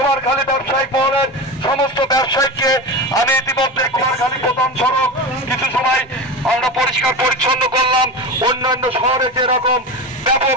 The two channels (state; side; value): normal; both; correlation 0.24